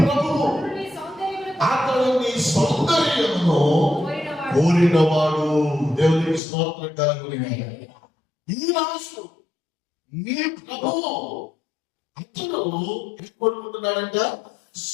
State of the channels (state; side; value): drops out; right; at 6.4 s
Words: అతడు నీ సౌందర్యమును కోరినవాడు. దేవునికి స్తోత్రం కలుగును. ఈ రాజు నీ ప్రభువు అతను ఏం కోరుకుంటున్నాడంట?